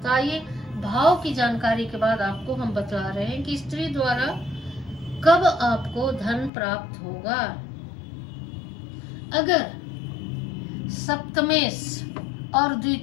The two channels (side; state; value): right; drops out; at 6.5 s